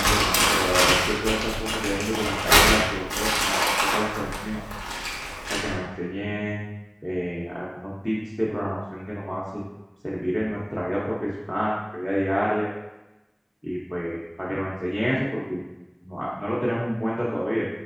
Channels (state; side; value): identical; both; correlation 1.00